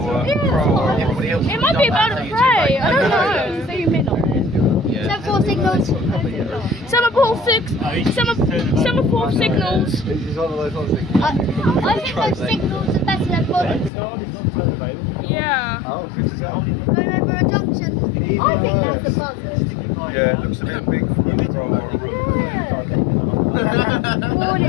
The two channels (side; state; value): right; drops out; at 13.9 s